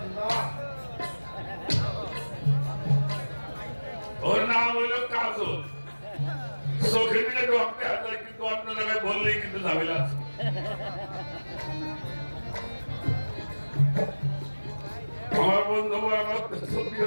ওর নাম হইল কাজল। চোখে দিলে ঢুকতে আসে, কিন্তু অন্য জায়গায় বললেই কিন্তু ঝামেলা আছে। আমার বন্ধু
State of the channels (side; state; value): both; inverted; correlation -1.00